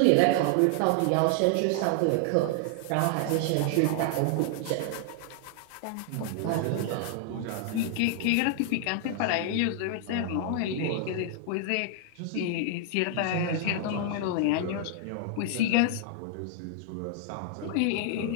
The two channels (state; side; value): different; both; correlation 0.00